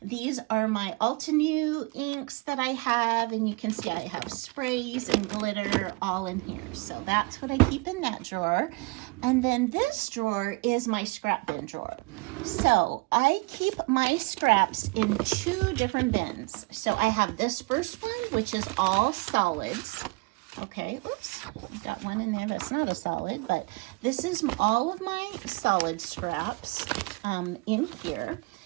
These are my Altenew inks that I have, and you can see I have sprays and glitter all in here. So that's what I keep in that drawer. And then this drawer is my scrap bin drawer. So I keep my scraps in 2 different bins. So I have this first one, which is all solids. Okay, oops, I got one in there that's not a solid, but this is all of my solid scraps in here.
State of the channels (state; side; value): quieter; left; 26.4 dB